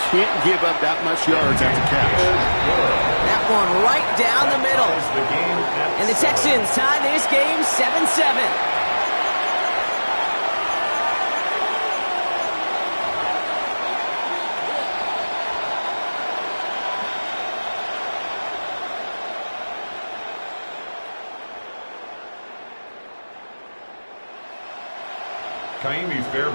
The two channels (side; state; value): both; inverted; correlation -1.00